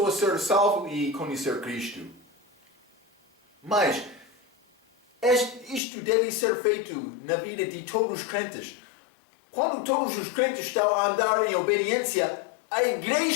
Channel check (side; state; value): right; drops out; at 5.8 s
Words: a ser salvo e conhecer Cristo. Mas isto deve ser feito na vida de todos os crentes. Quando todos os crentes estão a andar em obediência, a